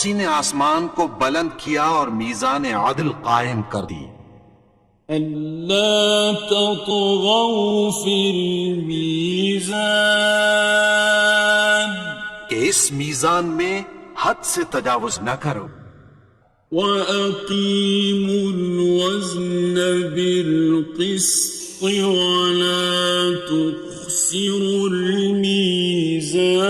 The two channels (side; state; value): both; identical; correlation 1.00